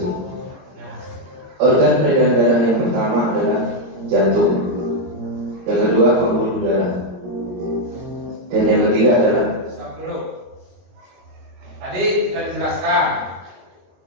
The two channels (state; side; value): late; left; 22 ms